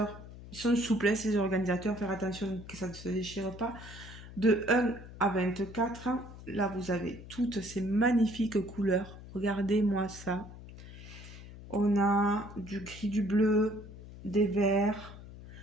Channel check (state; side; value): noise; left; hum, 15 dB below the sound